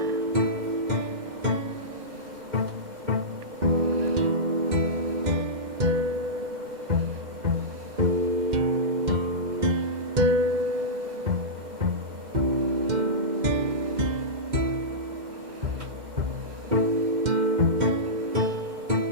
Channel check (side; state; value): left; late; 2.1 ms